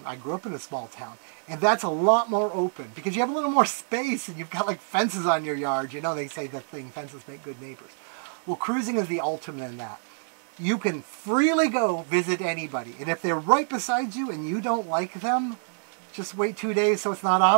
I grew up in a small town. And that's a lot more open, because you have a little more space, and you've got like fences on your yard. They say the thing, fences make good neighbors. Well, cruising is the ultimate in that. You can freely go visit anybody. And if they're right beside you and you don't like them, just wait 2 days so it's not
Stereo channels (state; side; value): silent; left; digital silence